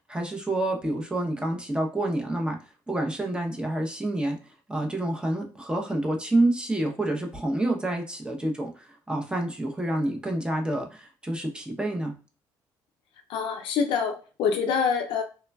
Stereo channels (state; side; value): normal; both; correlation 0.76